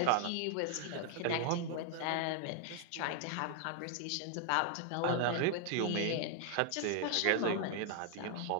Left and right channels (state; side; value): different; both; correlation 0.00